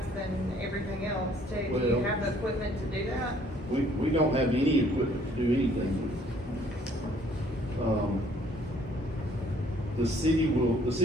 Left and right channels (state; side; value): normal; both; correlation 0.61